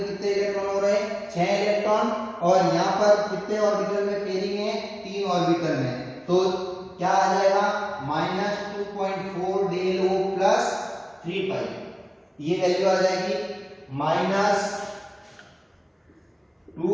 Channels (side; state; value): both; identical; correlation 1.00